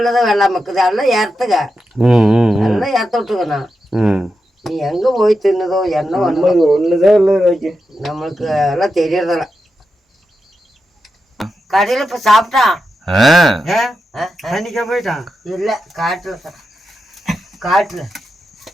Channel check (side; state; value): both; normal; correlation 0.88